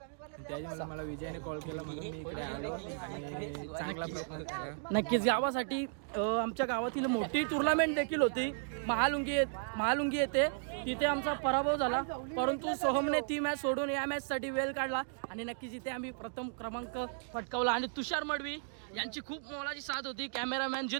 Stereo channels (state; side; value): silent; left; digital silence